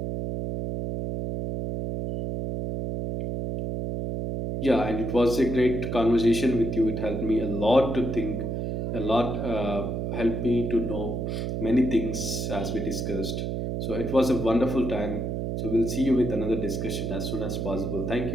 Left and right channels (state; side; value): noise; right; hum, 2 dB below the sound